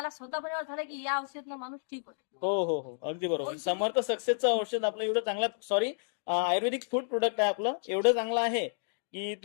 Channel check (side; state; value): right; silent; digital silence